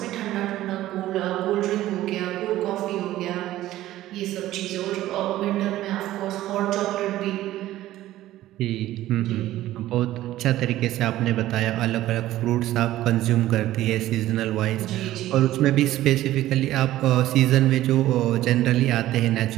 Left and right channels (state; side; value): quieter; left; 14.7 dB